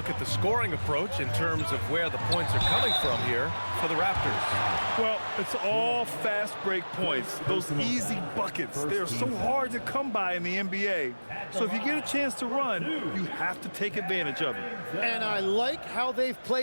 at the scoring approach in terms of where the points are coming from here for the Raptors. Well, it's all fast break points, those easy buckets. They're so hard to come by in the NBA. So if you get a chance to run, you have to take advantage of it. And I like how they've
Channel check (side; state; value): both; inverted; correlation -1.00